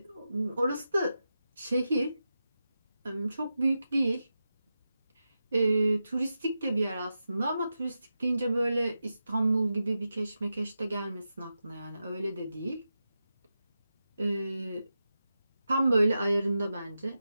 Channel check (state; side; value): inverted; both; correlation -0.90